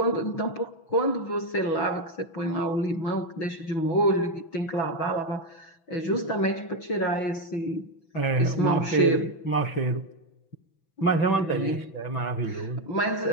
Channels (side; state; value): right; late; 6.1 ms